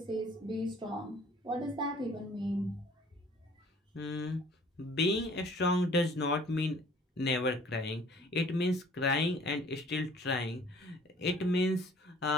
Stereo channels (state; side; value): normal; both; correlation 0.54